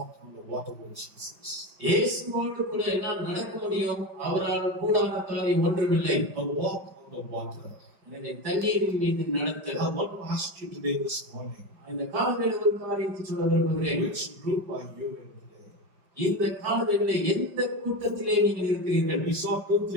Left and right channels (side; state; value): left; late; 5.3 ms